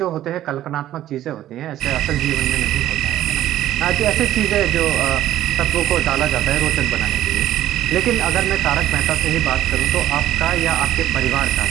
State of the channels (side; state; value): left; quieter; 12.9 dB